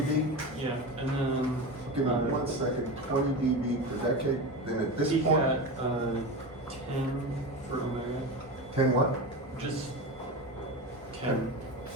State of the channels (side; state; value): both; normal; correlation 0.24